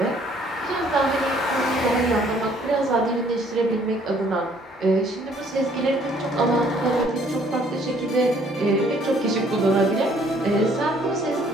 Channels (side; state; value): both; normal; correlation 0.61